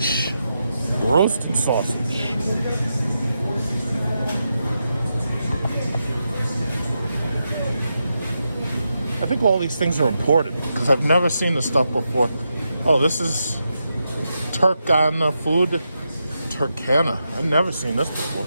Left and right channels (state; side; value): inverted; both; correlation -0.86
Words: Roasted sausage. I think all these things are imported because I've never seen this stuff before. Oh, this is Turkana food. Turkana. I've never seen this before.